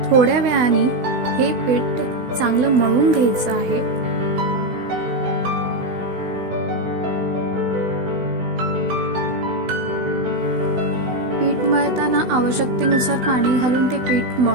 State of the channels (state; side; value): late; left; 16 ms